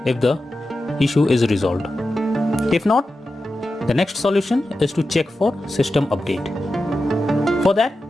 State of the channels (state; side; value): normal; both; correlation 0.91